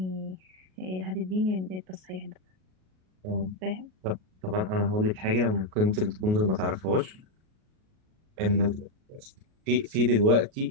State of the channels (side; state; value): left; late; 38 ms